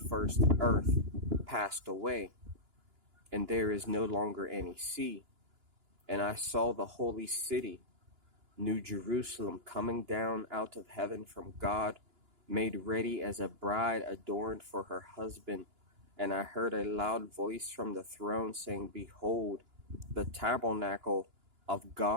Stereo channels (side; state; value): left; late; 2.9 ms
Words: earth passed away, and there is no longer any sea. And I saw the holy city, New Jerusalem, coming down out of heaven from God, made ready as a bride adorned for her husband. And I heard a loud voice from the throne saying, Behold, the tabernacle of